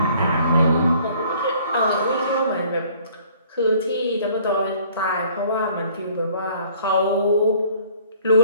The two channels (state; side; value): inverted; both; correlation -0.57